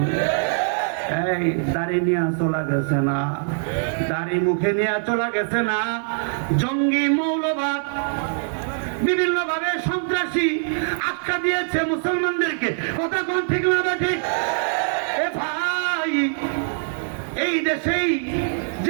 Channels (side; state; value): left; silent; 57 dB below the other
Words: এই দাড়ি নিয়ে চলা গেছে না, দাড়ি মুখে নিয়ে চলা গেছে না, জঙ্গি মৌলবাদ বিভিন্ন ভাবে সন্ত্রাসী আখ্যা দিয়েছে মুসলমানদেরকে। কথা কোন ঠিক না ঠিক? এ ভাই, এই দেশেই